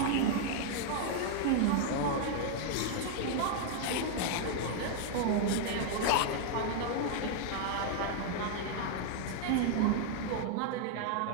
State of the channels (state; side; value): different; both; correlation 0.00